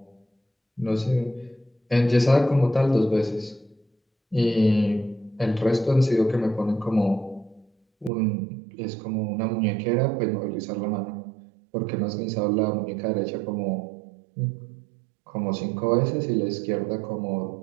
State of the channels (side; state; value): left; drops out; at 8.1 s